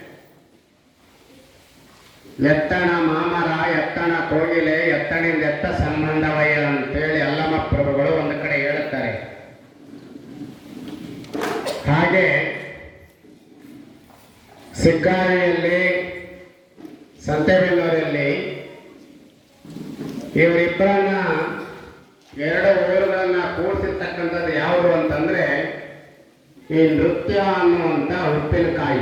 ಎತ್ತಣ ಮಾಮರ ಎತ್ತಣ ಕೋಗಿಲೆ ಎತ್ತಣಿಂದ ಎತ್ತ ಸಂಬಂಧವಯ್ಯ ಅಂತೇಳಿ ಅಲ್ಲಮ ಪ್ರಭುಗಳು ಒಂದು ಕಡೆ ಹೇಳುತ್ತಾರೆ. ಹಾಗೆ ಸಿಗ್ಗಾರಿಯಲ್ಲಿ ಸಂತೆಬೆನ್ನೂರಲ್ಲಿ ಇವರಿಬ್ಬರನ್ನ ಎರಡು ಊರುಗಳನ್ನ ಕೂಡಿಸಿರ್ತಕ್ಕಂಥದ್ದು ಯಾವುದು ಅಂತಂದ್ರೆ ಈ ನೃತ್ಯ ಅನ್ನುವಂಥ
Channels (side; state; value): both; identical; correlation 1.00